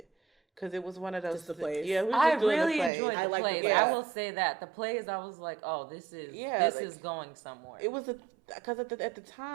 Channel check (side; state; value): left; drops out; at 2.9 s